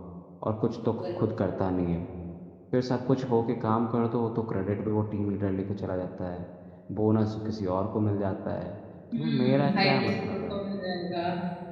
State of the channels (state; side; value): identical; both; correlation 1.00